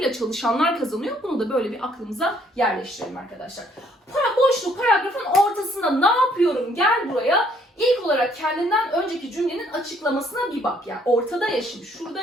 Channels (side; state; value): both; normal; correlation 0.65